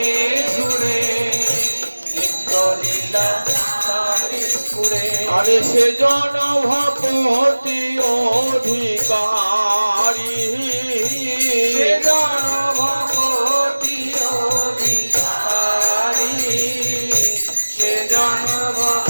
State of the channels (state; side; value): inverted; both; correlation -1.00